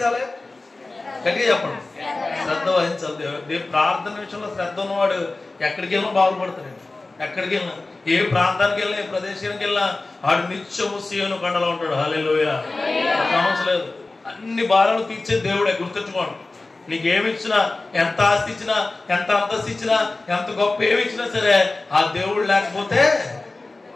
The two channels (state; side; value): quieter; right; 3.3 dB